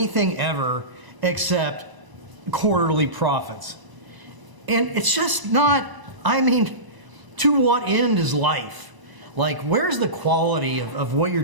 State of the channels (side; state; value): left; late; 1.0 ms